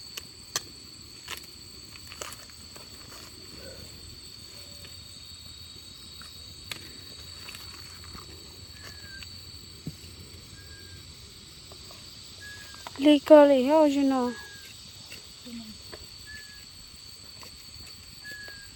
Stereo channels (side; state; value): both; identical; correlation 1.00